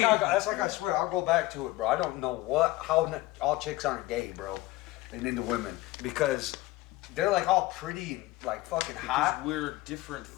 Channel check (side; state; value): right; quieter; 18.7 dB